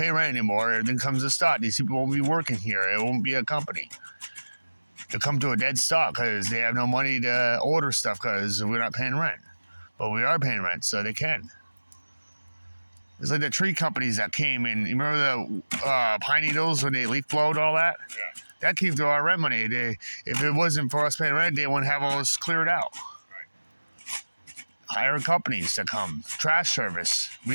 rent anymore, everything comes to stop. These people won't be working here. It won't be a company. They'll come to a dead stop because they have no money to order stuff because we're not paying rent. But we are paying rent, so they can. It's like the tree companies that came in. You remember the pine needles when they leaf blowed all that? Yeah. That came through our rent money. If it wasn't for us paying rent, they wouldn't have all this cleared out. Right. Hire companies to come. Trash service. We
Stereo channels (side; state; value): both; inverted; correlation -1.00